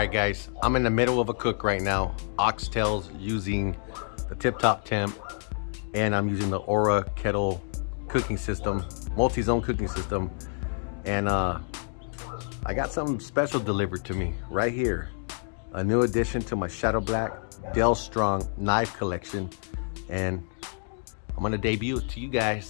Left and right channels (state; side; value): silent; right; digital silence